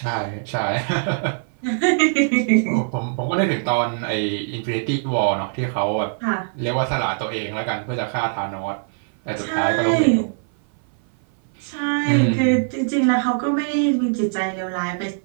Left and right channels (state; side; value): silent; left; 58 dB below the other